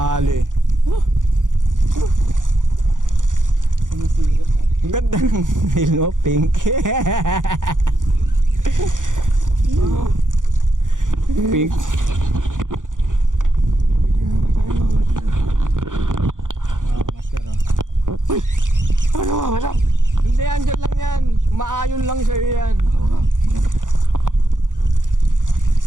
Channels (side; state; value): left; late; 0.88 ms